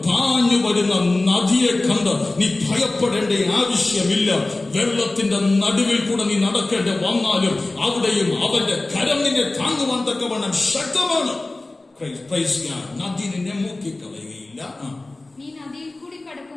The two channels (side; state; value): right; quieter; 3.0 dB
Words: പാഞ്ഞു വരുന്ന നദിയെ കണ്ട് നീ ഭയപ്പെടേണ്ട ആവശ്യമില്ല. വെള്ളത്തിന്റെ നടുവിൽ കൂടെ നീ നടക്കേണ്ടി വന്നാലും അവിടെയും അവന്റെ കരം നിന്നെ താങ്ങുവാൻ തക്കവണ്ണം ശക്തമാണ്. നദി നിന്നെ മുക്കിക്കളയുകയില്ല. നീ നദിയിൽ കൂടി